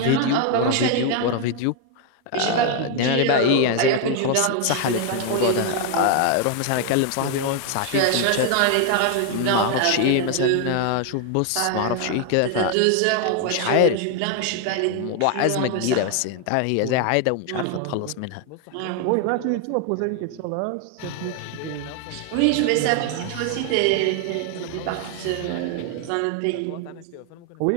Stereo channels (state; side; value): different; both; correlation 0.00